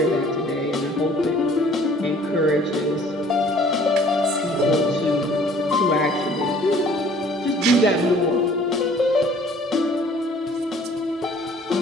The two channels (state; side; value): normal; both; correlation 0.54